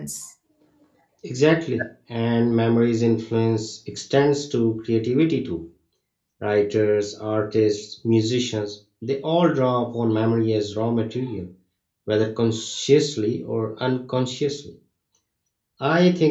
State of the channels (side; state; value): both; identical; correlation 1.00